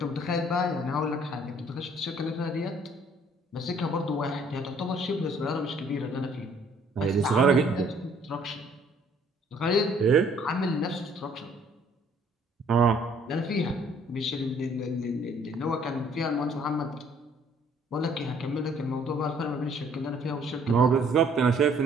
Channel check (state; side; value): normal; both; correlation 0.60